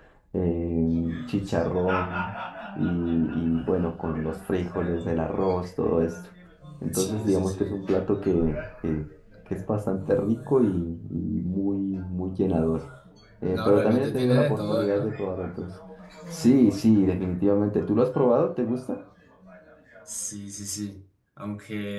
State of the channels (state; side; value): identical; both; correlation 1.00